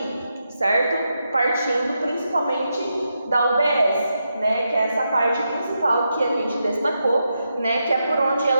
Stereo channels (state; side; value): inverted; both; correlation -0.85